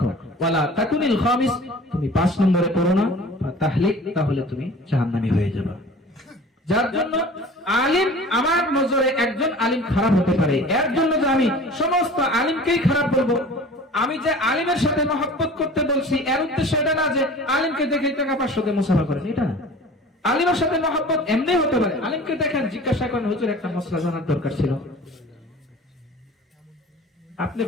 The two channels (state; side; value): normal; both; correlation 0.43